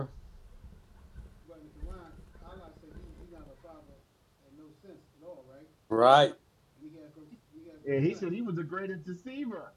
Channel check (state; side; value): identical; both; correlation 1.00